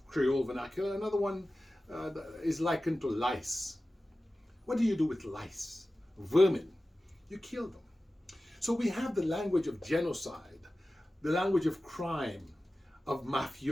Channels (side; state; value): both; normal; correlation 0.95